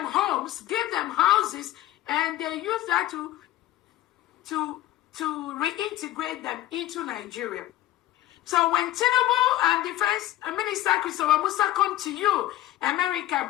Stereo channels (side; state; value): right; quieter; 14.7 dB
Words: homes, give them houses, and they use that to reintegrate them into Nigeria. So when Tinubu and Defense Minister Christopher Musa come to you, America,